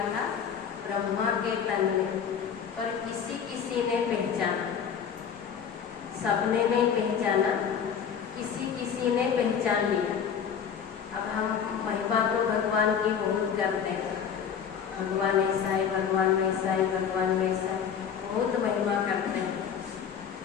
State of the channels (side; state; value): right; quieter; 7.5 dB